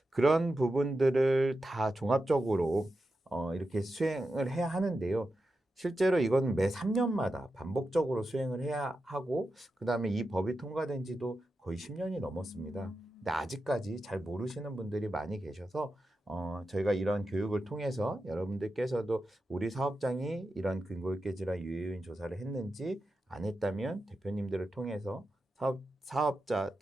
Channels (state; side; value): normal; both; correlation 0.90